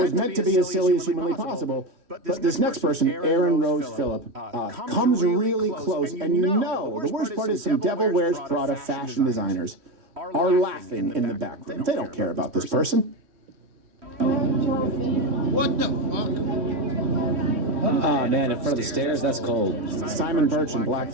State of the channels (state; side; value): late; left; 3.1 ms